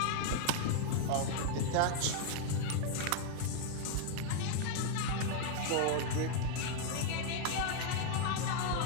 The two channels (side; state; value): both; different; correlation 0.00